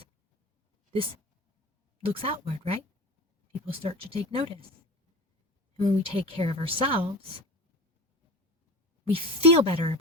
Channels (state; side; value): normal; both; correlation 0.32